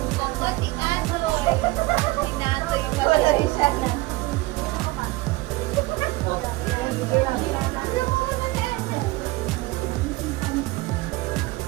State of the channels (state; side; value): quieter; left; 21.1 dB